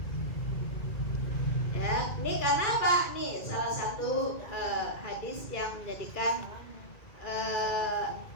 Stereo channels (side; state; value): right; late; 2.3 ms